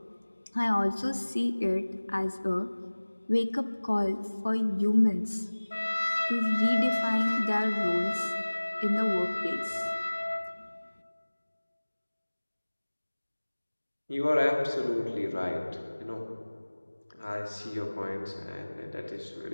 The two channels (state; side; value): inverted; both; correlation -1.00